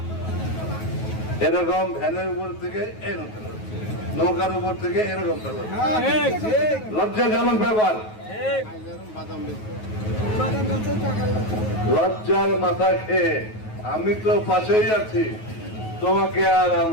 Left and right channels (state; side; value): late; right; 9.3 ms